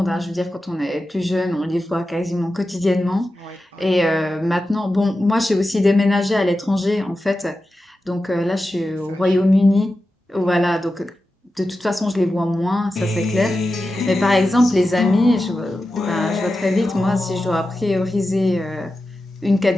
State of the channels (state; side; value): normal; both; correlation 0.92